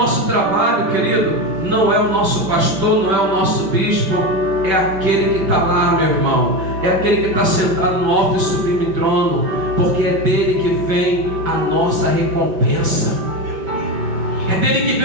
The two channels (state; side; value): late; left; 5.2 ms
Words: trabalho, querido, não é o nosso pastor, não é o nosso bispo, é aquele que está lá, meu irmão. É aquele que está sentado no alto e sublime trono, porque é dele que vem a nossa recompensa. É dele que